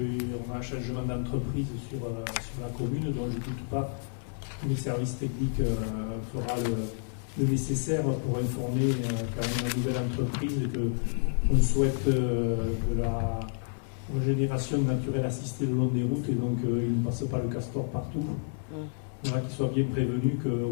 a un changement d'entreprise sur la commune, dont je ne doute pas que les services techniques fera le nécessaire pour informer quand même la nouvelle entreprise qu'on souhaite de la régénération naturelle assistée le long des routes, et donc il ne passe pas le castor partout. Voilà, qu'ils soient bien prévenus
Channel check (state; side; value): silent; right; 58 dB below the other